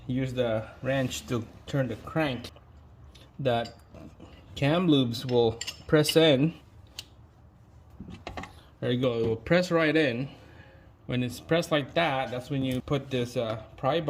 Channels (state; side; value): identical; both; correlation 1.00